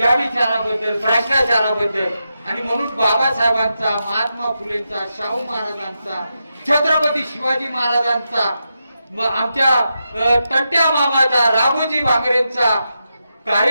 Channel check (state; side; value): inverted; both; correlation -0.87